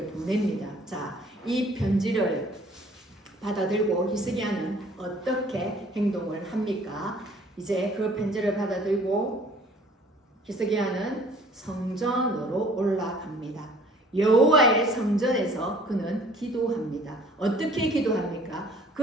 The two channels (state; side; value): normal; both; correlation 0.54